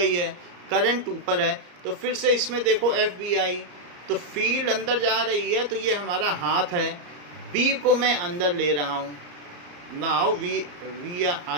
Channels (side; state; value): left; late; 34 ms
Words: है, करंट ऊपर है, तो फिर से इसमें देखो FBI, तो फील्ड अंदर जा रही है, तो ये हमारा हाथ है, B को मैं अंदर ले रहा हूँ, now